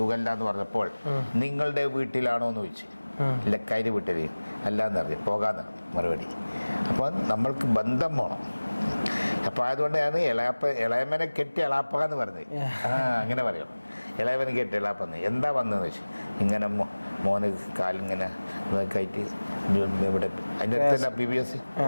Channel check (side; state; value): both; inverted; correlation -1.00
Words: എന്ന് പറഞ്ഞപ്പോൾ നിങ്ങളുടെ വീട്ടിലാണോ എന്ന് ചോദിച്ചു. ലക്കാരി വീട്ടിൽ അല്ലാന്ന് പറഞ്ഞു, പോകാന്ന് മറുപടി. അപ്പോൾ നമ്മൾക്ക് ബന്ധം വേണം. അപ്പോൾ അതുകൊണ്ടാണ് ഇളയമനെ കെട്ടി എളാപ്പ എന്ന് പറഞ്ഞത്. അങ്ങനെ പറയണം, ഇളയമനെ കെട്ടി എളാപ്പെന്ന്. എന്താ വന്നതെന്ന് വെച്ചു, ഇങ്ങനെ മോന് കാലിങ്ങനെ ആയിട്ട് ഇവിടെ അതിൻ്റെ അടുത്ത് തന്നെ PVS